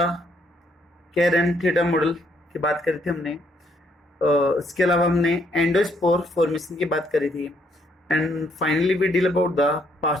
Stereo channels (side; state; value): both; normal; correlation 0.70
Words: Karen theta model की बात करी थी हमने। इसके अलावा हमने एंडोस्पोर फॉर्मेशन की बात करी थी and finally we deal about the